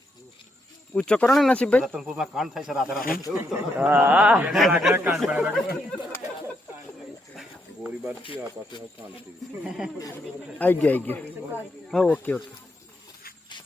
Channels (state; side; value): normal; both; correlation 0.78